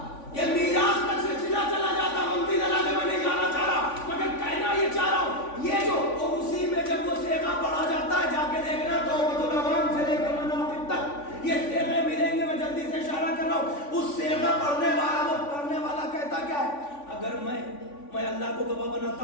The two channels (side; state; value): right; late; 3.5 ms